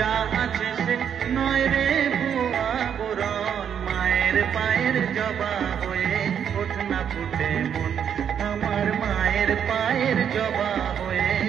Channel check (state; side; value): quieter; left; 8.3 dB